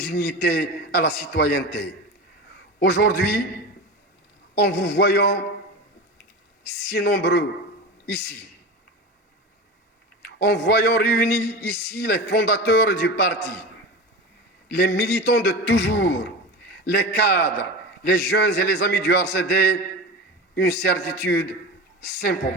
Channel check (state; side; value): normal; both; correlation 0.27